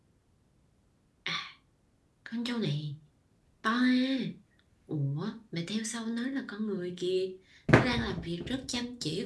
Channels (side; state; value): both; identical; correlation 1.00